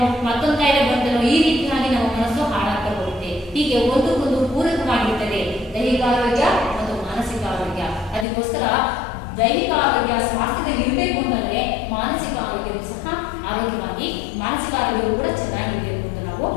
ಮತ್ತೊಂದು ಕಾಯಿಲೆ ಬಂತೇನೋ, ಈ ರೀತಿಯಾಗಿ ನಮ್ಮ ಮನಸ್ಸು ಹಾಳಾಗ್ತಾ ಹೋಗುತ್ತೆ. ಹೀಗೆ ಒಂದಕ್ಕೊಂದು ಪೂರಕವಾಗಿರ್ತದೆ ದೈಹಿಕ ಆರೋಗ್ಯ ಮತ್ತು ಮಾನಸಿಕ ಆರೋಗ್ಯ. ಅದಕ್ಕೋಸ್ಕರ ದೈಹಿಕ ಆರೋಗ್ಯ ಸ್ವಾಸ್ಥ್ಯದಲ್ಲಿ ಇರಬೇಕು ಅಂತಂದ್ರೆ ಮಾನಸಿಕ ಆರೋಗ್ಯವೂ ಸಹ ಆರೋಗ್ಯವಾಗಿ, ಮಾನಸಿಕ ಆರೋಗ್ಯವು ಕೂಡ ಚೆನ್ನಾಗಿರಬೇಕು ಅಂತ ನಾವು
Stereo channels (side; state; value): right; drops out; at 8.2 s